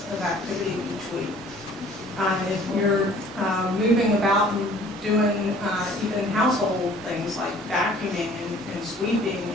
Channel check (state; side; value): normal; both; correlation 0.53